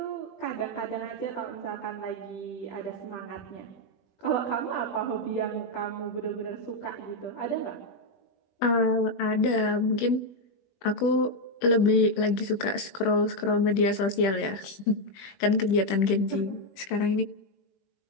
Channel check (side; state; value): right; late; 20 ms